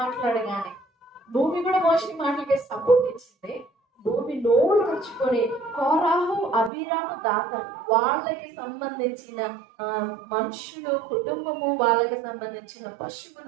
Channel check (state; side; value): drops out; left; at 6.7 s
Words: మాట్లాడగానే, భూమి కూడా మోషే మాటలకి సపోర్ట్ ఇచ్చింది. భూమి నోరు తెచ్చుకొని కోరాహు, అబీరాము, దాతాను వాళ్ళకి సంబంధించిన మనుషులు, కుటుంబము, వాళ్ళకి సంబంధించిన